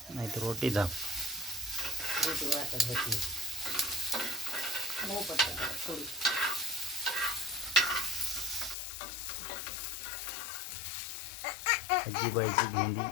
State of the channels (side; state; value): right; drops out; at 8.8 s